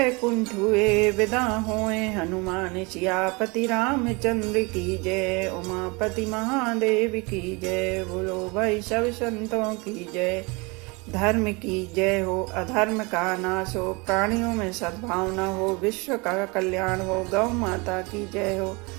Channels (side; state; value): left; quieter; 27.5 dB